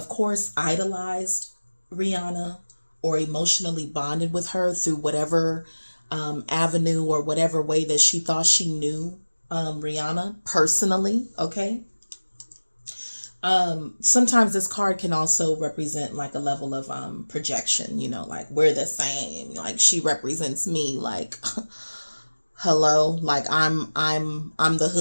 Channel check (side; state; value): both; inverted; correlation -1.00